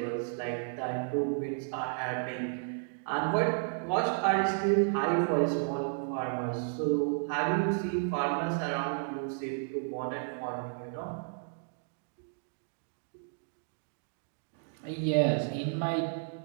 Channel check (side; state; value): left; silent; digital silence